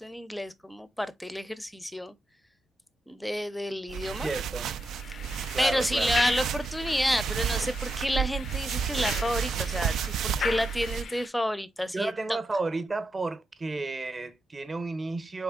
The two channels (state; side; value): normal; both; correlation 0.85